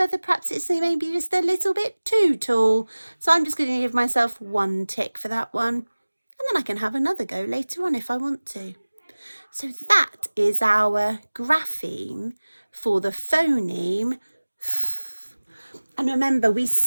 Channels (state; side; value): inverted; both; correlation -1.00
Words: perhaps it's maybe just a little bit too tall. So I'm just going to give myself 1 tick for that one. And then I can have another go later on if I want to. So that is our grapheme for the phoneme. And remember, we